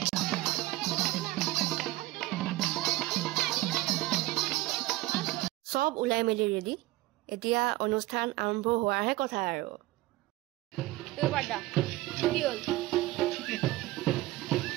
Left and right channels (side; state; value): left; quieter; 18.6 dB